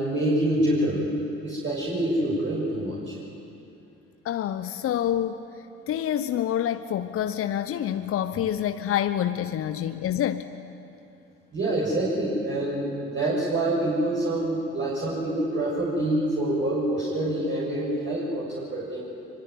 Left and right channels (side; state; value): both; normal; correlation 0.36